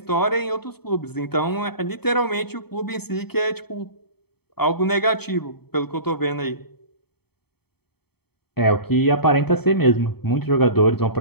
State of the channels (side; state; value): right; late; 0.96 ms